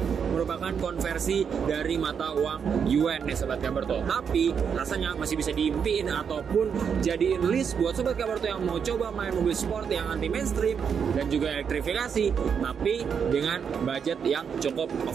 merupakan konversi dari mata uang yuan nih Sobat Kabarto. Tapi rasanya masih bisa diimpiin ataupun jadiin list buat Sobat Kabarto yang mau coba main mobil sport yang anti mainstream dan juga elektrifikasi, tapi dengan budget yang cukup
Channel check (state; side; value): quieter; left; 7.0 dB